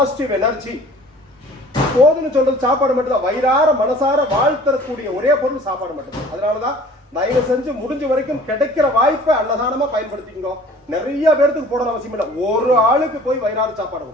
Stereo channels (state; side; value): normal; both; correlation 0.48